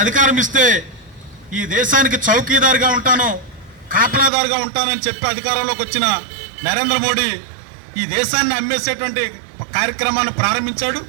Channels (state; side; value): drops out; left; at 4.3 s